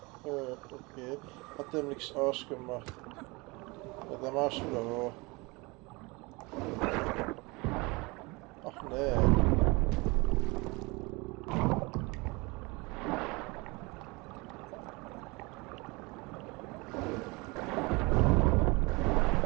Okay, hat dem nichts ausgemacht. Ja, dann machst du wieder hoch. Ach nee.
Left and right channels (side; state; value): left; quieter; 25.4 dB